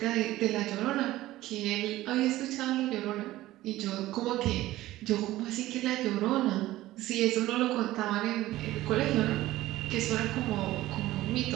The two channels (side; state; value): left; quieter; 16.1 dB